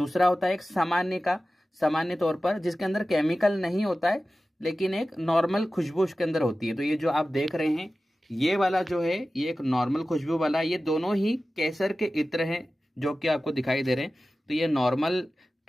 होता है एक सामान्य का, सामान्य तौर पर जिसके अंदर केमिकल नहीं होता है लेकिन एक नॉर्मल खुशबू उसके अंदर होती है। तो ये जो आप देख रहे हैं, ये वाला जो है ये एक नॉर्मल खुशबू वाला, ये दोनों ही केसर के इत्र हैं जो कि आपको दिखाई दे रहे हैं। तो ये नॉर्मल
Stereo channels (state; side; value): normal; both; correlation 0.95